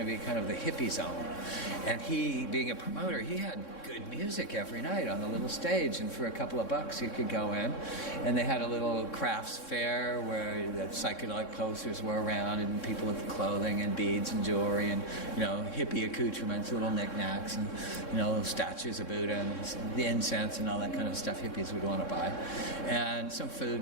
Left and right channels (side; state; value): right; late; 3.6 ms